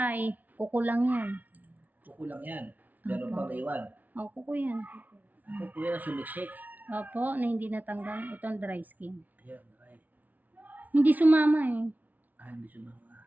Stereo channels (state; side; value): late; left; 0.078 ms